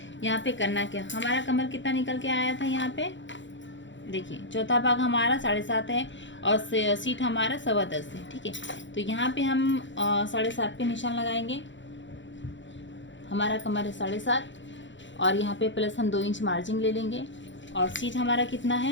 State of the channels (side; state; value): right; late; 0.54 ms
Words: यहाँ पे करना क्या, हमारा कमर कितना निकल के आया था, यहाँ पे देखिए चौथा भाग हमारा 7.5 है और सीट हमारा 10.25 है, ठीक है। तो यहाँ पे हम 7.5 पे निशान लगाएंगे। हमारा कमर है 7.5 और यहाँ पे प्लस हम 2 इंच मार्जिन ले लेंगे। और सीट हमारा कितना है,